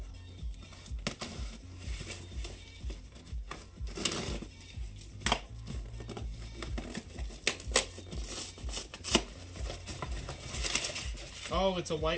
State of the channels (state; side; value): identical; both; correlation 1.00